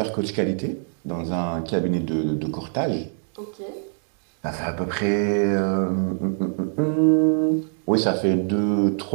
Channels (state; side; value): silent; left; digital silence